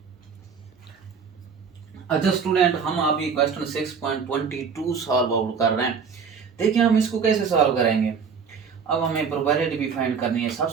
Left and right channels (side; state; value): left; quieter; 6.1 dB